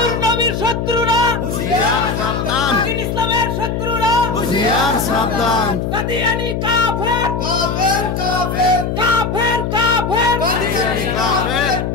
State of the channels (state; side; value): noise; left; hum, 2 dB below the sound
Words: নবীর শত্রুরা হুঁশিয়ার সাবধান, দ্বীন ইসলামের শত্রুরা হুঁশিয়ার সাবধান, কাদিয়ানী কাফের কাফের কাফের কাফের কাফের কাদিয়ানী কাফের,